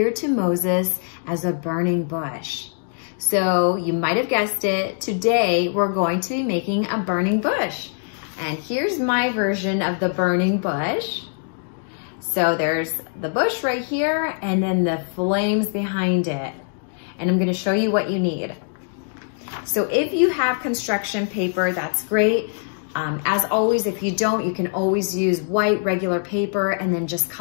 to Moses as a burning bush. So you might have guessed it, today we're going to be making a burning bush. And here's my version of the burning bush. So there's the bush right here, and then the flames behind it. And I'm gonna show you what you need. So if you have construction paper, that's great. As always, if you don't, you can always use white regular paper and then just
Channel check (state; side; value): silent; right; 64 dB below the other